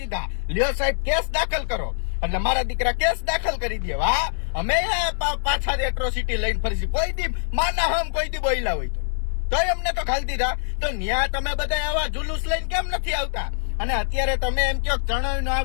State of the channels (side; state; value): right; silent; 62 dB below the other